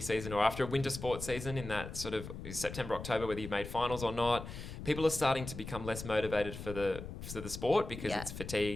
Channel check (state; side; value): noise; left; rumble, 9 dB below the sound